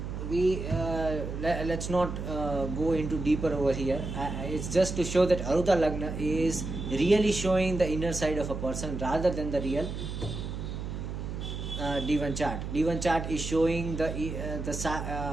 let's not go into deeper over here. It's just to show that Arudha Lagna is really showing the inner side of a person rather than the real Divan chart. Divan chart is showing the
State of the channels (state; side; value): noise; right; hum, 6 dB below the sound